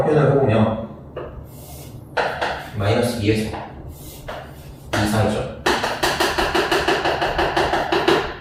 표현을 해보면 마이너스 2에서 2 사이죠.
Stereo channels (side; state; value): both; identical; correlation 1.00